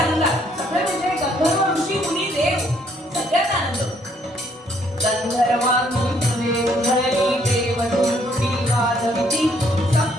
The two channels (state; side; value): normal; both; correlation 0.67